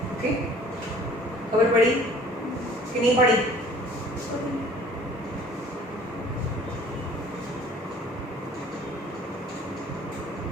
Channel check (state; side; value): normal; both; correlation 0.52